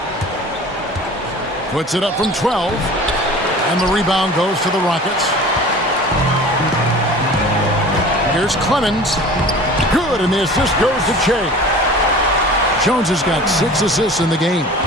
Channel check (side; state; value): both; normal; correlation 0.41